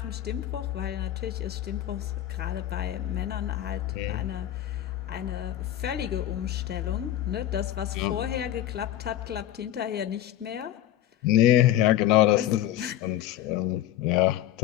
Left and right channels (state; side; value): quieter; right; 12.6 dB